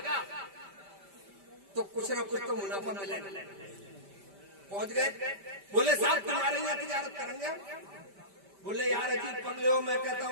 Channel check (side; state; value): left; late; 5.1 ms